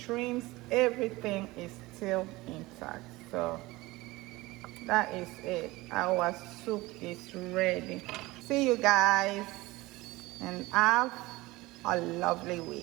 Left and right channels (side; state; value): left; quieter; 20.5 dB